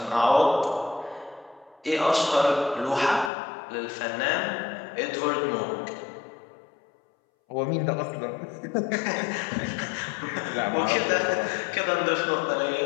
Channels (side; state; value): right; drops out; at 3.3 s